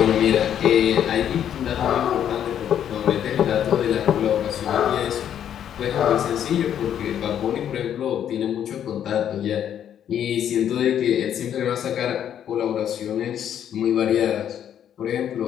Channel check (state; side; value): quieter; right; 9.7 dB